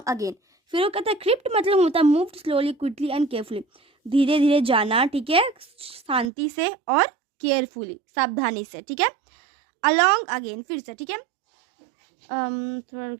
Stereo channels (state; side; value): drops out; left; at 6.3 s